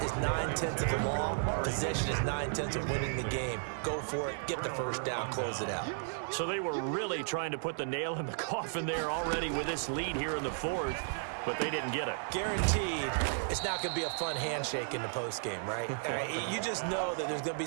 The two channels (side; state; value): left; silent; 55 dB below the other